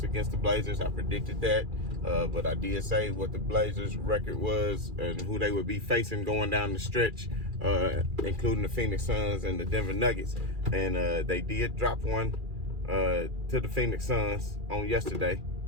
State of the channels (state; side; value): late; left; 2.4 ms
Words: against the Blazers. I predicted that, but I did say what the Blazers' record was and who they would be facing going down the stretch, including the Phoenix Suns and the Denver Nuggets. And they did drop one to the Phoenix Suns on yesterday,